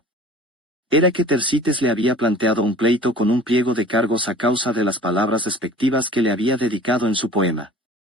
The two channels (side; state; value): both; normal; correlation 0.44